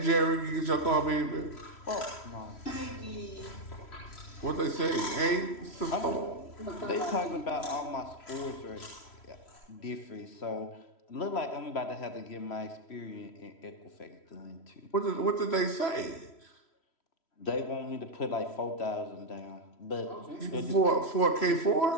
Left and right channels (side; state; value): right; late; 3.1 ms